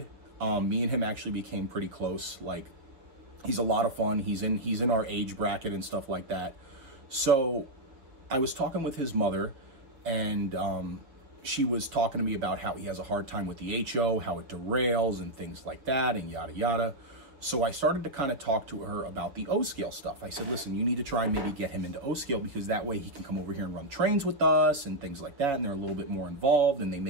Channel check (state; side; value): late; left; 6.9 ms